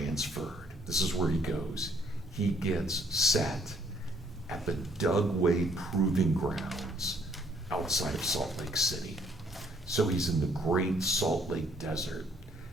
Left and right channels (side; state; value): both; normal; correlation 0.64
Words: This is where he goes. He gets set at the Dugway Proving Grounds outside of Salt Lake City. So he's in the Great Salt Lake Desert.